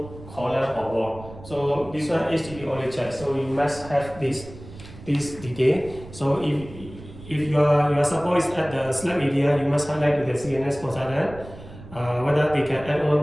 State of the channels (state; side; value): noise; right; rumble, 16 dB below the sound